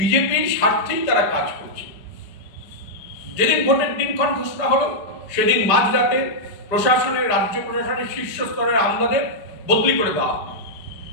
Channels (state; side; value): late; right; 4.9 ms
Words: স্বার্থেই তারা কাজ করছে। যেদিন ভোটের দিনক্ষণ ঘোষণা হলো, সেদিন মাঝরাতে রাজ্য প্রশাসনের শীর্ষ স্তরের আমলাদের বদলি করে দেওয়া হলো।